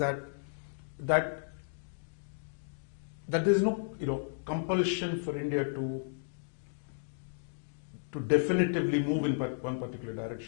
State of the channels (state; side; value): silent; right; digital silence